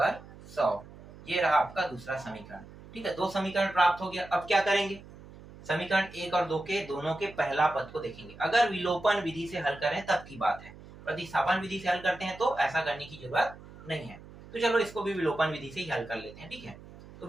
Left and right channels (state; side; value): noise; right; hum, 18 dB below the sound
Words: 100, ये रहा आपका दूसरा समीकरण, ठीक है। 2 समीकरण प्राप्त हो गया। अब क्या करेंगे, समीकरण 1 और 2 के दोनों के पहला पद को देखेंगे। अगर विलोपन विधि से हल करें तब की बात है, प्रतिस्थापन विधि से हल करते हैं तो ऐसा करने की जरूरत नहीं है। तो चलो इसको भी विलोपन विधि से ही हल कर लेते हैं, ठीक है। तो